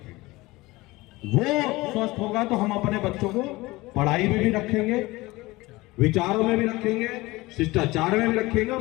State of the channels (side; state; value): right; quieter; 20.7 dB